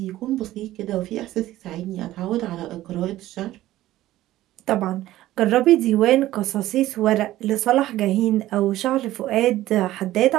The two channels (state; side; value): quieter; left; 15.1 dB